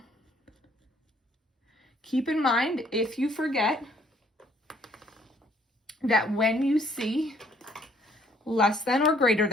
Keep in mind, if you forget, that when you see less than or greater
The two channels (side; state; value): both; normal; correlation 0.63